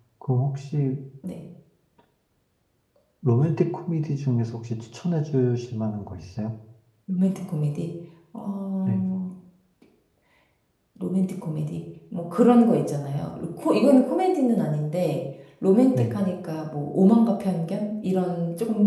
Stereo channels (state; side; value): identical; both; correlation 1.00